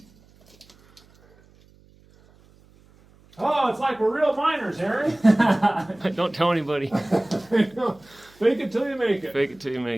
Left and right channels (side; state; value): right; noise; hum, 29 dB below the sound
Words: Oh, it's like we're real miners, Harry. Don't tell anybody. Fake it till you make it. Fake it till you